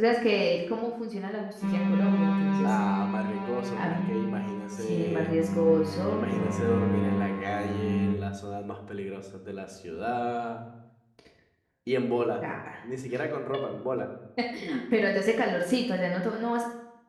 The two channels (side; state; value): both; identical; correlation 1.00